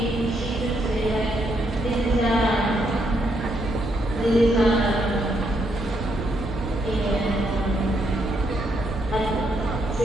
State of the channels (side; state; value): both; normal; correlation 0.76